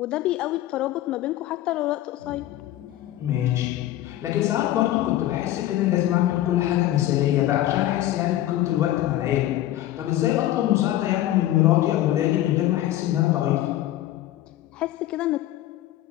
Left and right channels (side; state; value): right; quieter; 14.0 dB